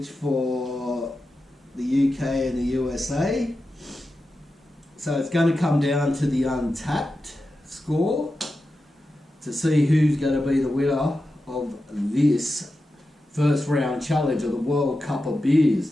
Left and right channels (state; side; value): normal; both; correlation 0.91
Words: for the UK and the USA. So it's going to come down to the untapped score to see who's going to be the winner of this first round challenge of the World Cup of